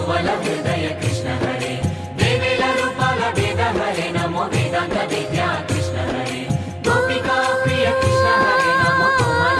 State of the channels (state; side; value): identical; both; correlation 1.00